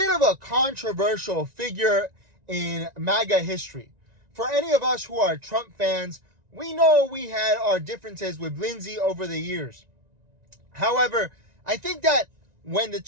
of a controversial figure in MAGA history. For any of us who are Trump fans, we know we had our differences with Lindsey over the years. However, I think that when the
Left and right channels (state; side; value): late; left; 1.9 ms